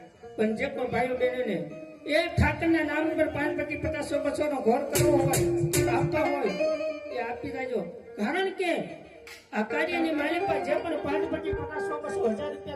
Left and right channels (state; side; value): identical; both; correlation 1.00